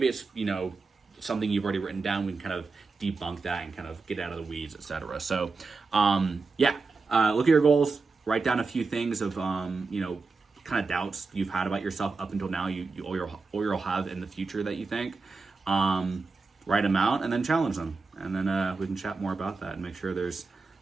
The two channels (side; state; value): left; quieter; 4.2 dB